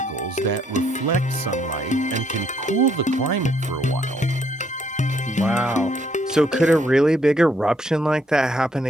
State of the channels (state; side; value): normal; both; correlation 0.69